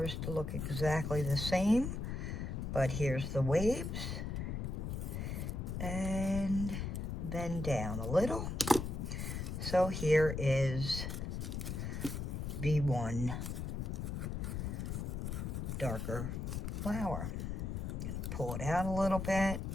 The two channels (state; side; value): noise; left; rumble, 3 dB below the sound